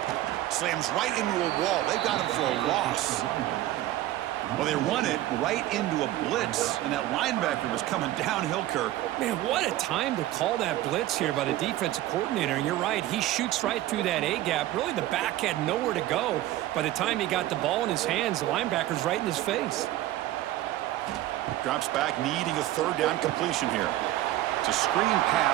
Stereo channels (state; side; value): quieter; left; 14.9 dB